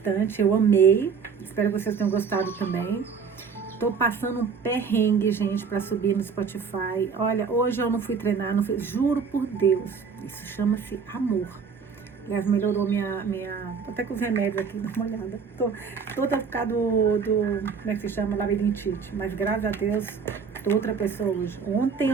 eu amei, espero que vocês tenham gostado também. Tô passando um perrengue, gente, para subir no Spotify. Olha, hoje eu não fui treinar, juro por Deus, isso chama-se amor. Aliás, melhorou até com os remédios aqui, dá uma olhada. Tô toda por causa como é que se chama, labirintite. Mas graças a Deus, tô outra pessoa hoje. Ontem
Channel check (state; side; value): quieter; left; 5.8 dB